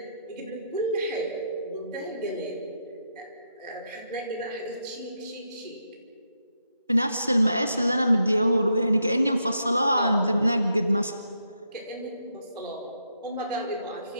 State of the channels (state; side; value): inverted; both; correlation -0.80